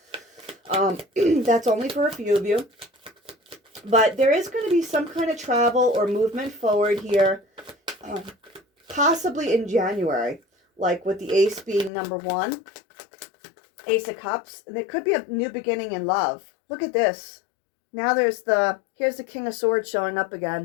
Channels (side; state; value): right; drops out; at 11.9 s